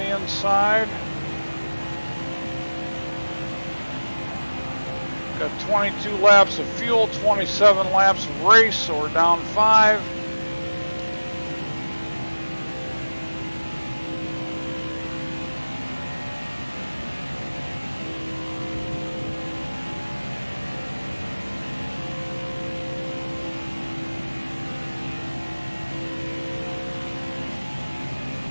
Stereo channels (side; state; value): both; inverted; correlation -1.00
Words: inside. Got 22 laps of fuel, 27 laps of race, so we're down 5.